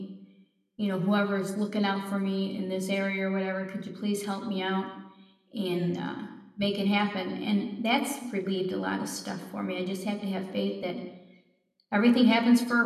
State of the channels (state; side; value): identical; both; correlation 1.00